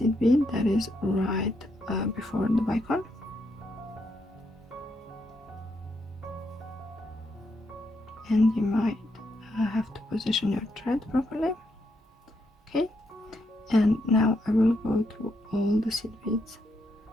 bead that is right before the bicone. And you might have to position your thread properly. Okay, and now I will go through all the seed beads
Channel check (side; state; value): both; normal; correlation 0.79